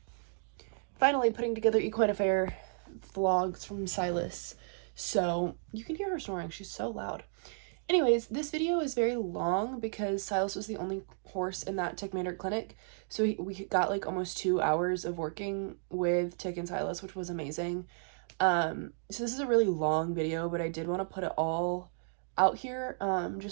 finally putting together Equine Affair vlogs from Silas. So you can hear her snoring, she's so loud. Anyways, this video is very long because Silas was the only horse in that Tik Maynard clinic. So we got like almost 2 hours of working with Tik and Silas, which was amazing. So this is a really long video, but I did want to put it all out here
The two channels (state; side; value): silent; left; digital silence